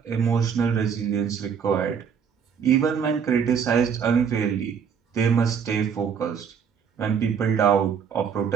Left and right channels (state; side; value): quieter; left; 7.0 dB